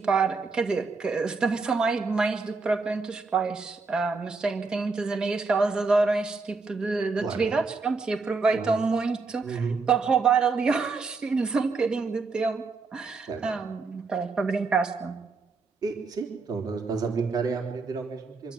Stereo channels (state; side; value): quieter; left; 4.2 dB